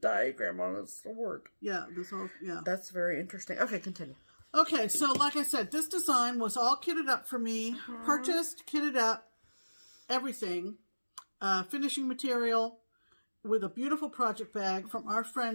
on a sword. Yeah, this whole That's very interesting. Okay, continue. Okay, so like I said, this design was all kitted up for me. Purchased, kitted up, everything. Finishing material with a beautiful project bag from our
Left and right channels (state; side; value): inverted; both; correlation -1.00